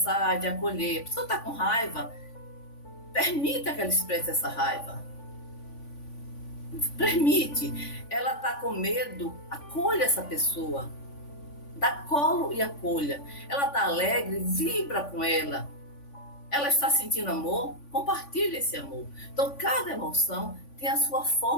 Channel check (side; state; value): right; late; 3.5 ms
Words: de acolher. A pessoa está com raiva, permita que ela expresse essa raiva. Permite. Ela está com medo, acolha essa pessoa. Dá colo e acolha. Ela está alegre, vibra com ela. Ela está sentindo amor, compartilhe esse amor. Então, cada emoção tem a sua